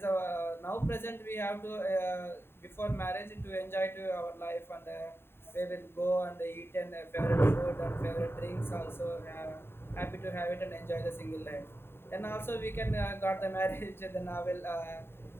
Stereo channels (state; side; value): late; right; 0.11 ms